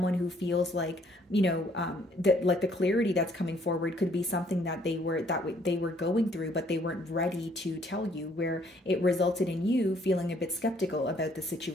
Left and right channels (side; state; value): both; normal; correlation 0.64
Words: who feels like, that like the clarity that's coming forward could be something that they were going through, but they weren't ready to tell you, where it resulted in you feeling a bit skeptical about the